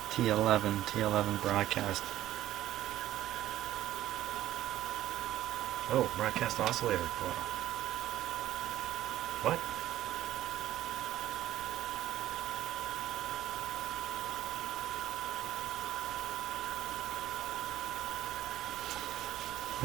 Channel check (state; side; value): quieter; left; 13.6 dB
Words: T11 broadcast. Oh, broadcast oscillator coil. What?